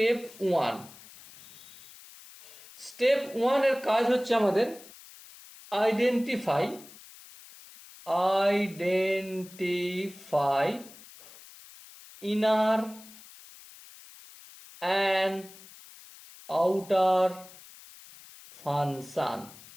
1। স্টেপ 1 এর কাজ হচ্ছে আমাদের identify inner and outer function.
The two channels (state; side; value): noise; left; hiss, 20 dB below the sound